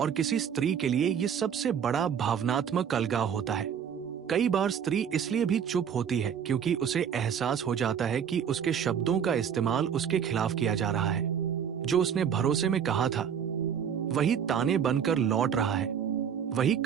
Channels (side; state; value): left; quieter; 8.0 dB